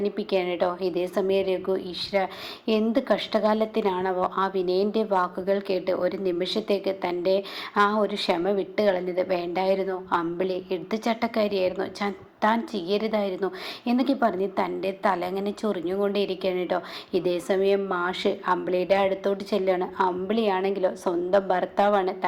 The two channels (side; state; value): both; identical; correlation 1.00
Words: കേട്ടോ. ഇതേ സമയം രഘു ഈശ്വര എന്ത് കഷ്ടകാലത്തിനാണവോ ആ വിനയൻ്റെ വാക്കുകൾ കേട്ട് ഒരു നിമിഷത്തേക്ക് തൻ്റെ ആ ഒരു ക്ഷമ വിട്ട് കളഞ്ഞത്. വേണ്ടായിരുന്നു, അമ്പിളി എടുത്തുചട്ടക്കാരിയായിരുന്നു, താൻ ചെയ്യരുതായിരുന്നു എന്നൊക്കെ പറഞ്ഞ് തൻ്റെ തല അങ്ങനെ ചൊറിഞ്ഞുകൊണ്ടേയിരിക്കുകയാണ് കേട്ടോ. ഇതേ സമയം മാഷ് അമ്പിളിയുടെ അടുത്തോട്ട് ചെല്ലുകയാണ്. അമ്പിളിയാണെങ്കിലോ സ്വന്തം ഭർത്താവാണ്,